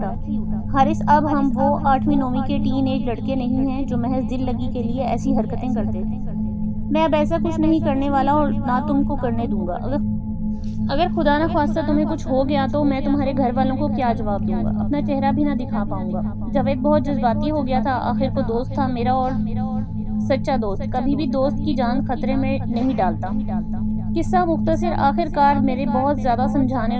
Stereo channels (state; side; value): identical; both; correlation 1.00